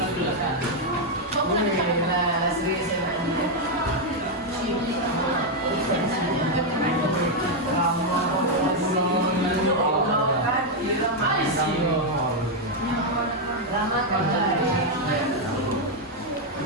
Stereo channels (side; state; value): both; normal; correlation 0.01